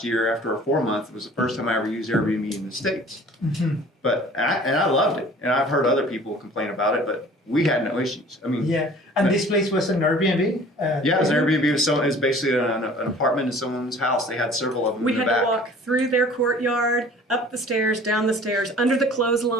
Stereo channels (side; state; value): both; normal; correlation 0.48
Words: year after a 4-month, it was the first time I ever used Airbnb in the States. Mhm. But I loved it, and I've heard other people complain about it, but we had no issues. I mean, Yeah. And this place was an Airbnb? yeah, it was an Airbnb. It was basically an apartment in someone's house. They had several of them We in the had back. to walk through their courtyard, up the stairs, down the stairs, under the